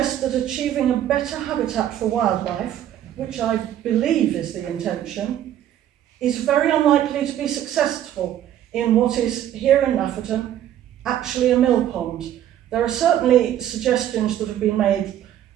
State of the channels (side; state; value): left; quieter; 11.4 dB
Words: that achieving a better habitat for wildlife, which I believe is the intention, is very unlikely to be successful in what is, here in Nafferton, actually a mill pond. There are certainly suggestions that have been made,